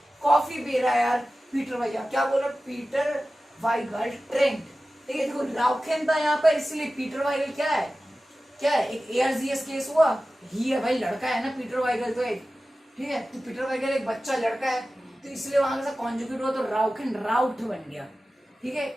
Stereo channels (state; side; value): normal; both; correlation 0.95